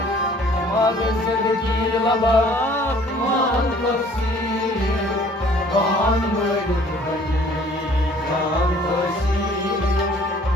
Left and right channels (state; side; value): normal; both; correlation 0.55